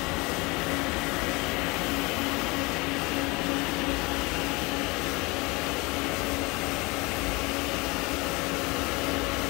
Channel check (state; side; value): quieter; right; 25.1 dB